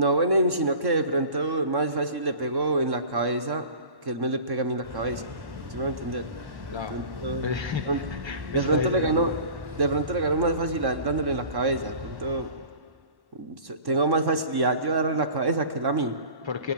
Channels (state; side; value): late; left; 1.1 ms